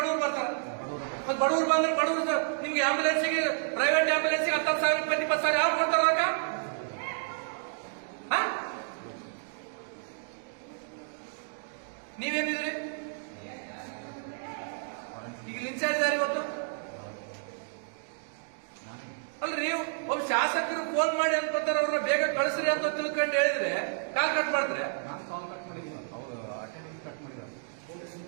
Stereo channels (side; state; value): left; silent; digital silence